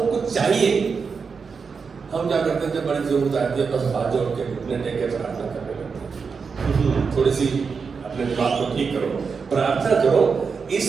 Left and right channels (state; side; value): quieter; left; 5.4 dB